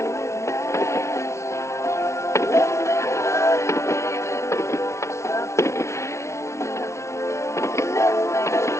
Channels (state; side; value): late; right; 0.13 ms